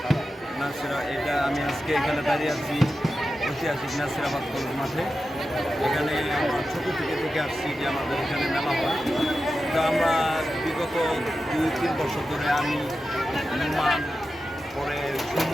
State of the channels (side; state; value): both; normal; correlation 0.91